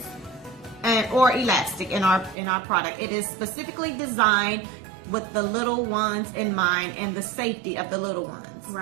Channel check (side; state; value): left; drops out; at 2.4 s